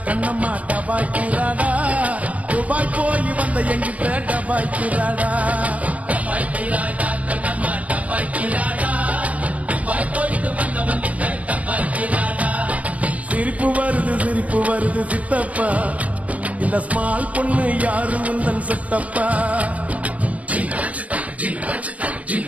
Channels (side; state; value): left; late; 0.068 ms